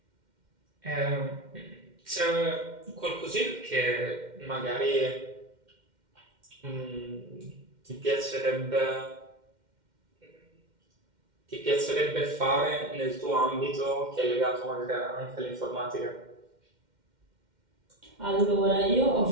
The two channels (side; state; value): left; late; 2.1 ms